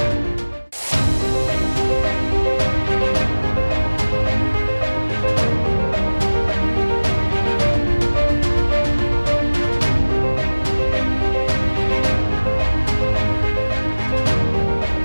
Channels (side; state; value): both; inverted; correlation -1.00